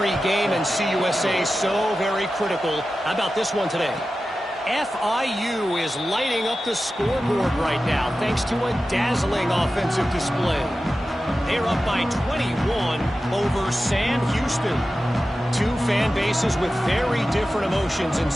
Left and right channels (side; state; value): both; normal; correlation 0.93